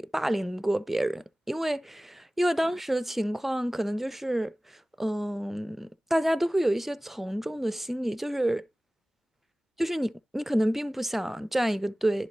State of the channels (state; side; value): normal; both; correlation 0.98